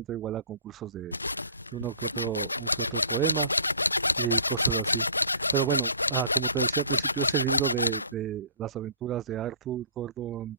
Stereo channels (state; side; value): inverted; both; correlation -0.47